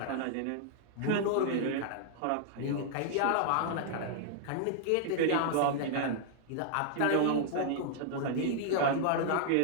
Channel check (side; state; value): both; different; correlation -0.01